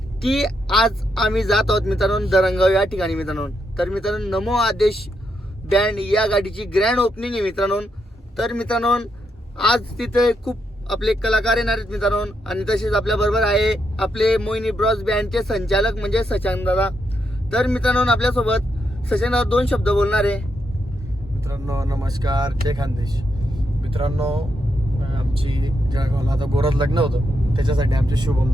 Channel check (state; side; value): normal; both; correlation 0.81